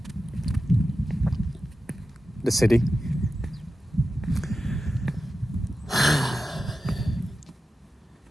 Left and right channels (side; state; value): both; normal; correlation 0.92